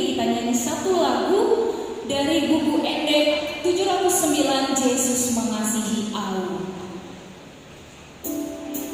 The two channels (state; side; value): identical; both; correlation 1.00